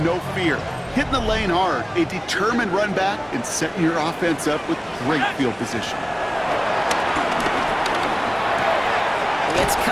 no fear, hitting the lane hard, a determined run back, and setting your offense up with great field position. It's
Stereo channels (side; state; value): both; identical; correlation 1.00